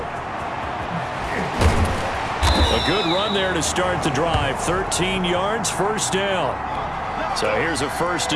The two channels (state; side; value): identical; both; correlation 1.00